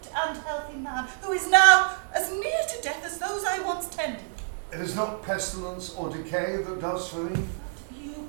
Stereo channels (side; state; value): left; silent; 59 dB below the other